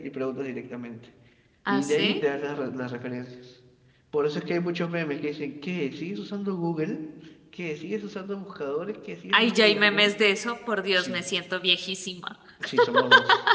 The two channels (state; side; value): identical; both; correlation 1.00